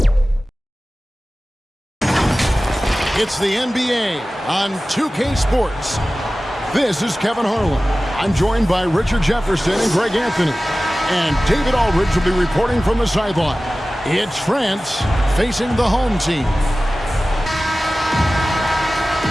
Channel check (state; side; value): normal; both; correlation 0.96